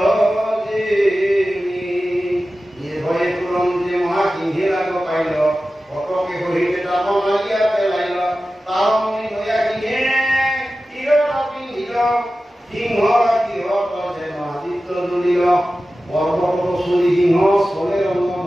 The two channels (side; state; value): both; normal; correlation 0.94